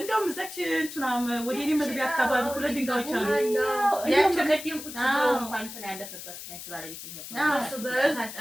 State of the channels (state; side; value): noise; left; hiss, 11 dB below the sound